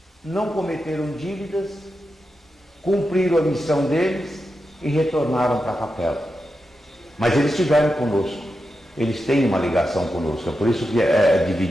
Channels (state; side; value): normal; both; correlation 0.89